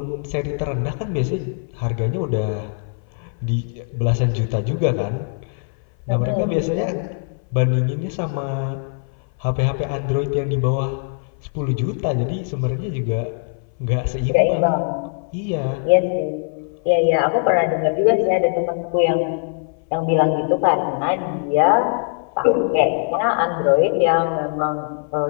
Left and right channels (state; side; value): silent; right; 59 dB below the other